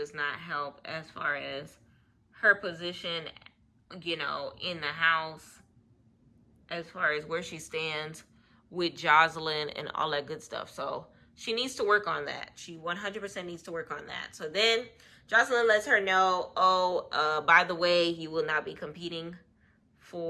not help as far as her position, you know, in the house, as far as where she stands with Joseline and all that good stuff. So she needs to work on that. She 100% needs to work on that. So then Joseline lets her know, by the way, you will not be competing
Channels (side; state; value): both; identical; correlation 1.00